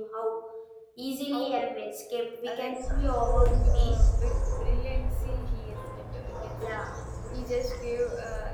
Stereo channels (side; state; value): both; identical; correlation 1.00